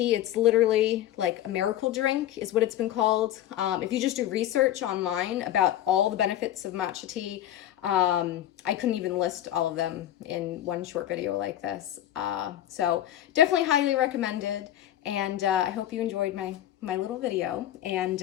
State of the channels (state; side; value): quieter; right; 12.5 dB